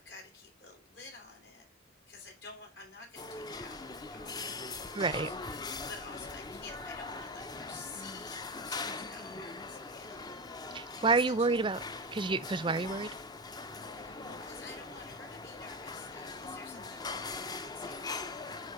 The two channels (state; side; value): normal; both; correlation 0.16